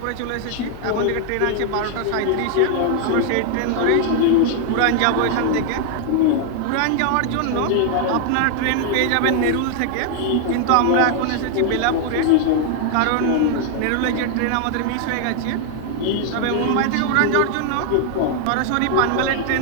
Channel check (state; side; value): different; both; correlation 0.00